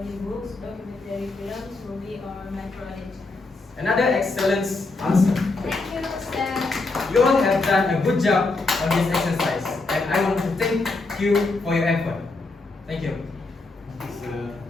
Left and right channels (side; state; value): right; quieter; 3.4 dB